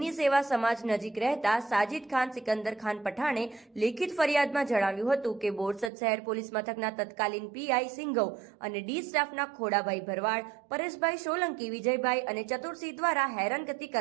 સેવા સમાજ નજીક રહેતા સાજિદ ખાન સિકંદર ખાન પઠાણે લેખિત ફરિયાદમાં જણાવ્યું હતું કે બોરસદ શહેર પોલીસ મથકના તત્કાલીન પીઆઈ સિંઘવ અને ડી સ્ટાફના ખોડાભાઈ ભરવાડ, પરેશભાઈ સોલંકી, વિજયભાઈ અને ચતુરસિંહ દ્વારા હેરાનગતિ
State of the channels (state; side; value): drops out; left; at 5.9 s